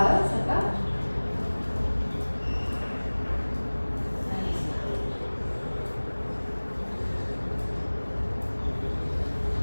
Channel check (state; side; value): inverted; both; correlation -1.00